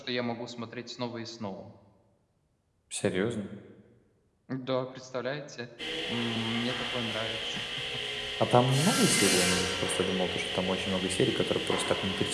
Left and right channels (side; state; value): both; identical; correlation 1.00